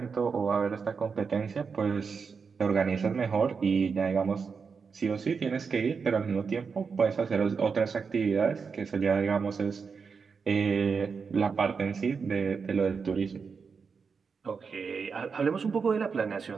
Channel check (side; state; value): left; quieter; 5.5 dB